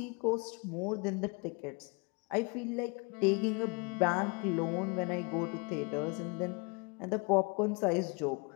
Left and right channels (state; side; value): quieter; right; 30.9 dB